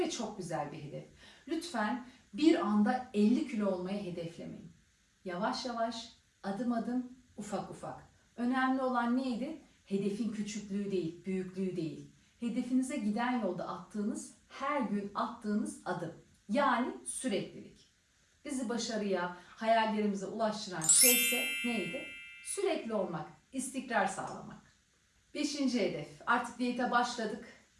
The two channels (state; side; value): identical; both; correlation 1.00